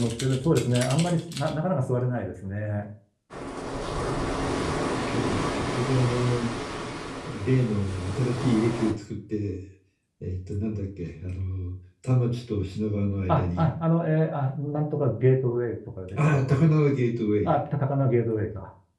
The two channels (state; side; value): identical; both; correlation 1.00